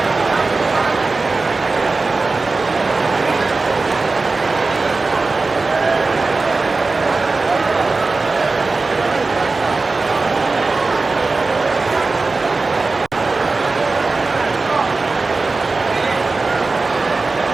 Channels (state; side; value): quieter; left; 3.7 dB